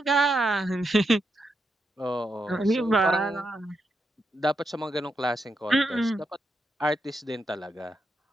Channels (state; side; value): normal; both; correlation 0.83